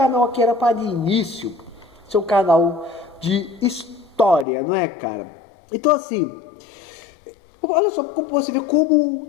aqui era para de início ser um canal de história, não é, cara? Então, assim, olha só como você vê como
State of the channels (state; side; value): drops out; right; at 4.5 s